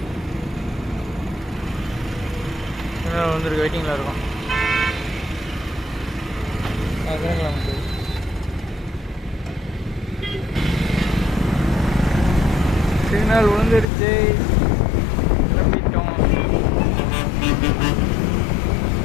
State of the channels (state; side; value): drops out; right; at 13.9 s